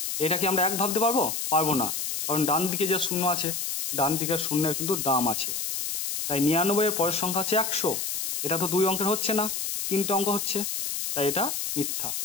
এটা কি আমরা 1 ভাবতে পারবো? পারবো না, কারণ ডান দিকে যে শূন্য আছে, ডান দিকের শূন্যের কিন্তু দাম আছে। তাই 99 এর পরের সংখ্যা হচ্ছে 100, এটা তো 2 অঙ্কের হচ্ছে না, 3টে অঙ্ক হচ্ছে, তাই এটা মিথ্যা।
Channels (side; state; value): left; noise; hiss, 3 dB below the sound